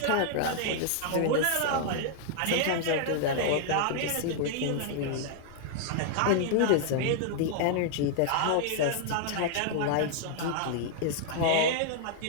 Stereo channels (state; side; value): different; both; correlation 0.00